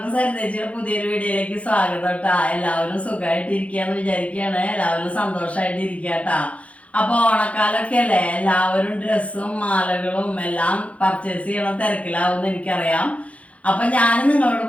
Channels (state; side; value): late; right; 0.064 ms